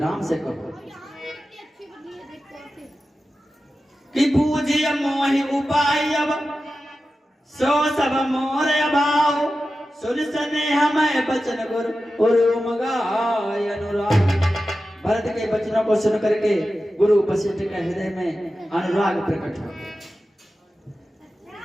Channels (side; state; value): both; normal; correlation 0.93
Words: से कहो कि पूजिय मोहि उपाय अब सो सब मोर अभाव, सुन स्नेह मैं बचन गुरु गाय अनुराग। भरत के वचनों को सुन करके गुरु वशिष्ठ के हृदय में अनुराग प्रकट हो।